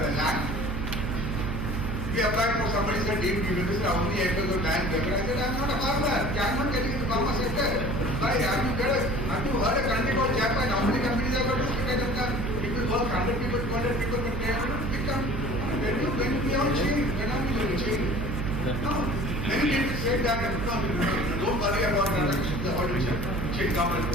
a land. We applied for somebody said, Dave, you will how many acres of land there? I said, I'm not a farmer. I'm not getting into the farmer sector. Why? Have you heard a country called Japan? How many companies are going to look at them? People work 100 people, 200 people, but they are not become. When we all change, when are we going to change? No. Many people say that, no, don't worry about that. The audience change government.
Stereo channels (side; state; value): right; noise; hum, 3 dB below the sound